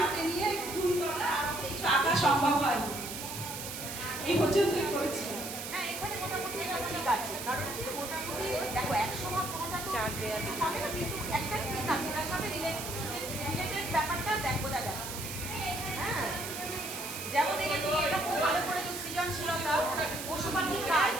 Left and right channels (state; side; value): noise; right; hiss, 7 dB below the sound